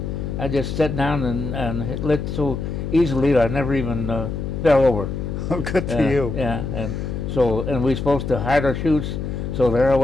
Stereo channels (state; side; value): noise; left; hum, 4 dB below the sound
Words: sat down and lit so easily that I never even fell over. Oh, good for you. Yeah, and we supposed to hide our chutes, so there I